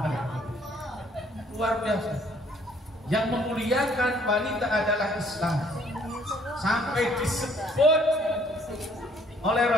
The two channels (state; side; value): normal; both; correlation 0.62